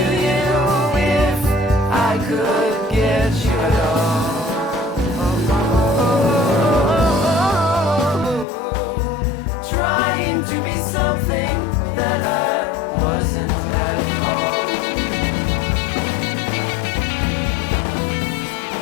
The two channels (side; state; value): right; drops out; at 8.5 s